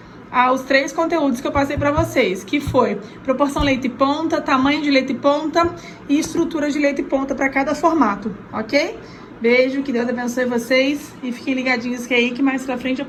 aos 3 conteúdos que eu passei pra vocês. Que foi proporção leito e ponta, tamanho de leito e ponta e estrutura de leito e ponta para cada formato, ok? Beijo, que Deus abençoe vocês. E fiquem ligadinhos que aí que mais pra frente eu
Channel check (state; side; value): identical; both; correlation 1.00